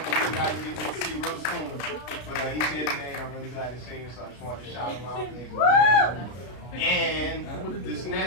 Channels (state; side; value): late; right; 33 ms